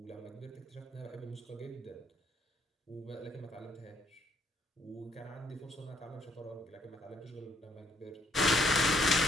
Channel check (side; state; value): both; normal; correlation 0.69